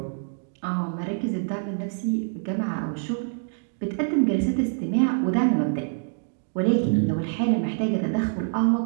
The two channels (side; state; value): left; silent; digital silence